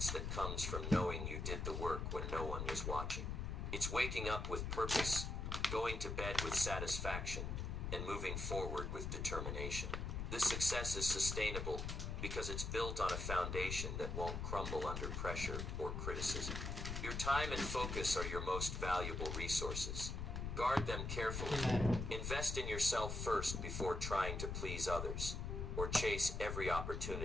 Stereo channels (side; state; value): left; noise; rumble, 3 dB below the sound